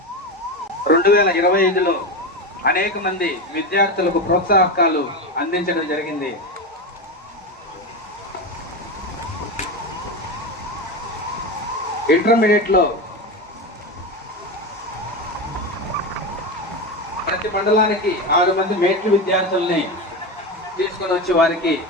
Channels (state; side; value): normal; both; correlation 0.19